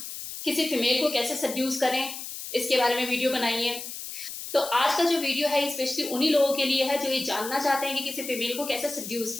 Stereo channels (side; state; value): left; noise; hiss, 9 dB below the sound